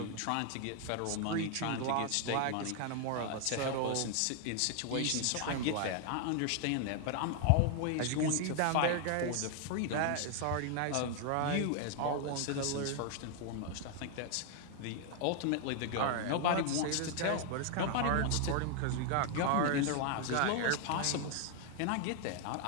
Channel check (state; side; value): different; both; correlation 0.00